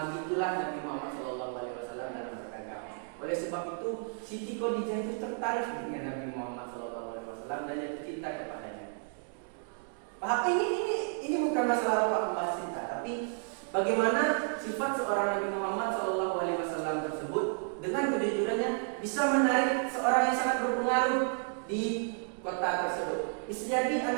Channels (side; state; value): left; silent; 56 dB below the other